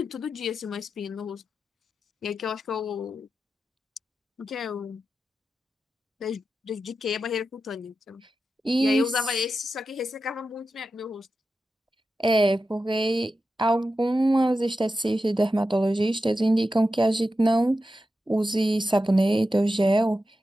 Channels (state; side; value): normal; both; correlation 0.90